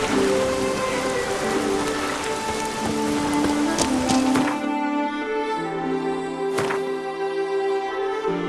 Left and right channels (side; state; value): both; identical; correlation 1.00